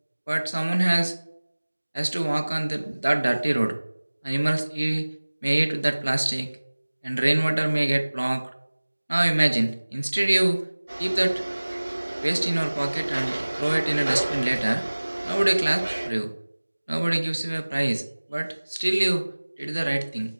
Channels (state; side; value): inverted; both; correlation -1.00